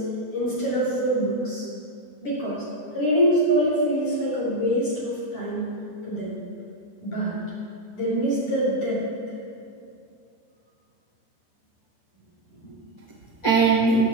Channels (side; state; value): right; late; 10 ms